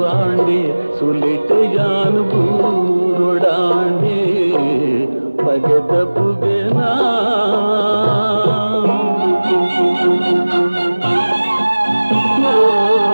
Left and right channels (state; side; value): inverted; both; correlation -1.00